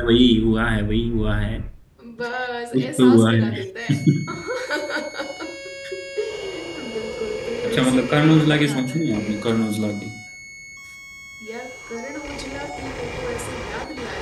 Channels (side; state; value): both; identical; correlation 1.00